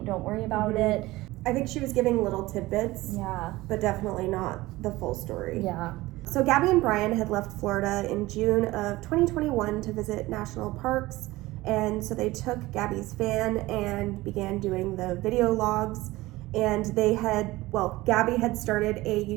Don't worry about it. I think she was giving little tidbits. Yeah. But definitely not the full story. Yeah. So Gabby and Brian had left Florida in June of 2021 to visit national parks, and so they took Gabby's van and began doing the video logs, and Gabby had started a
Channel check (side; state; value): left; quieter; 19.0 dB